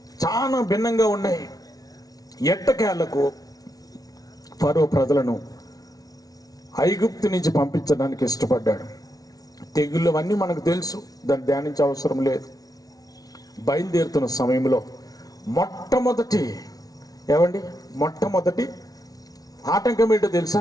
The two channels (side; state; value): right; late; 0.18 ms